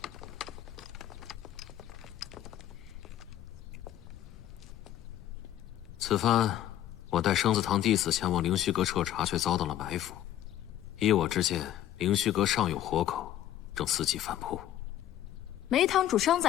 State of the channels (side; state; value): right; quieter; 12.3 dB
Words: 此番我带生子堂弟子前往灵虚阁彻查，却遭到了埋伏。依我之见，灵虚阁尚有活口，正伺机反扑。梅堂主伤